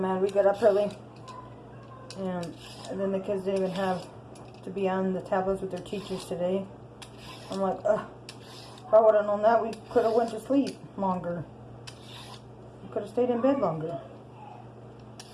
We got up early. And then the kids didn't even have to be on the tablets with their teachers today. I'm like, ugh. If I would have known that, we could have went to sleep longer. We could have stayed in bed longer.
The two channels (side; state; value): both; identical; correlation 1.00